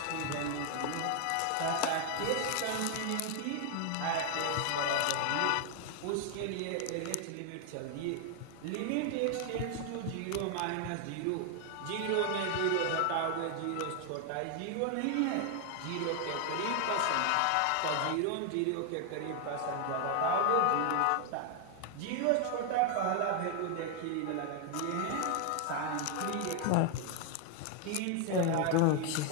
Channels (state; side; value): different; both; correlation 0.00